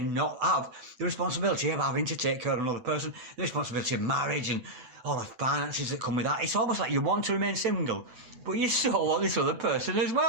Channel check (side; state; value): left; late; 8.0 ms